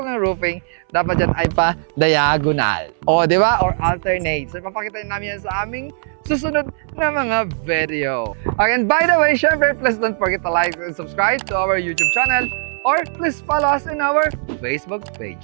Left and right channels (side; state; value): left; silent; 67 dB below the other